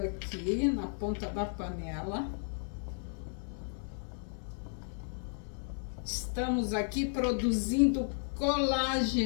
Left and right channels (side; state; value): right; silent; 55 dB below the other